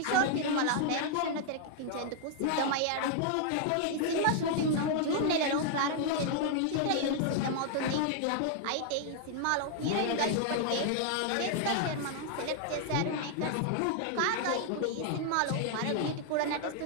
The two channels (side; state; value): both; different; correlation 0.00